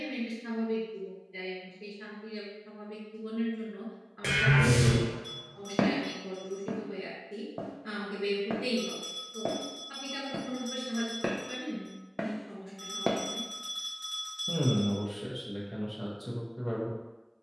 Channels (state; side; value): identical; both; correlation 1.00